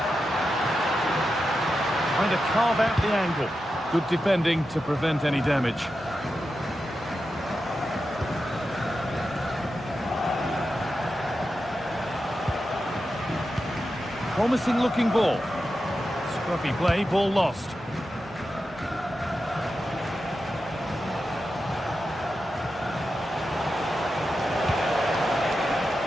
Trying to carve out the angle. Good defending to prevent any damage. Promising looking ball. Scruffy play, ball lost.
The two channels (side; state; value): both; normal; correlation 0.90